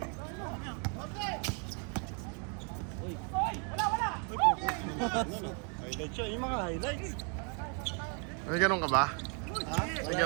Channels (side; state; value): left; quieter; 38.4 dB